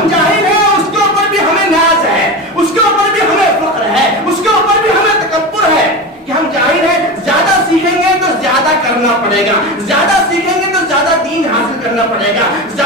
جاہل ہیں اس کے اوپر بھی ہمیں ناز ہے, اس کے اوپر بھی ہمیں فخر ہے, اس کے اوپر بھی ہمیں تکبر ہے کہ ہم جاہل ہیں. زیادہ سیکھیں گے تو زیادہ کرنا پڑے گا, زیادہ سیکھیں گے تو زیادہ دین حاصل کرنا پڑے گا,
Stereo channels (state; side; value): normal; both; correlation 0.24